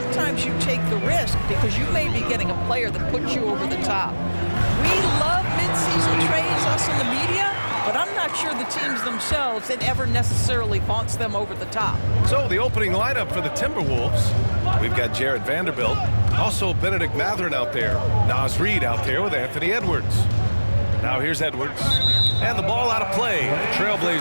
you take the risk because you may be getting a player that puts you over the top. We love mid-season trades, us in the media, but I'm not sure the teams themselves, it ever necessarily vaunts them over the top. So the opening lineup for the Timberwolves, we've got Jared Vanderbilt, also Benedict Mathurin out there, Naz Reid out there with Anthony Edwards. Now here's Edwards, and the ball out of play. The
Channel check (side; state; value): both; inverted; correlation -1.00